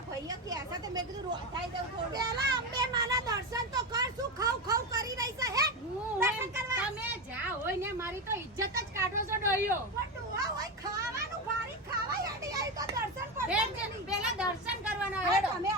ભાઈઓ ક્યાં છે તે મેં કીધું રોધાઈ દઉં થોડું પેલા અંબે માના દર્શન તો કર શું ખાવ ખાવ કરી રહી છે હે દર્શન કરવા તમે જા હોય ને મારી તો ઇજ્જત જ કાઢો છો ડોહીઓ. પણ ડોહા હોય ખાવાનું ભારી ખાવા હેડી આવી તો દર્શન બેન પડશે છે, પેલા દર્શન કરવાના હવે હેડો. તમે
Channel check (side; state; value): both; normal; correlation 0.16